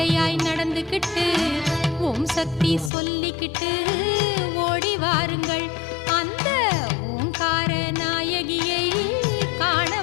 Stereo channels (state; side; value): drops out; right; at 2.9 s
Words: நடந்துக்கிட்டு ஓம் சக்தி சொல்லிக்கிட்டு ஓடி வாருங்கள், அந்த ஓங்கார நாயகியை காண